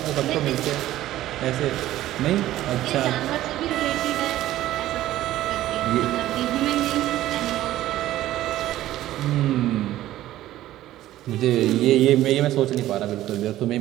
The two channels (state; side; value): quieter; left; 14.3 dB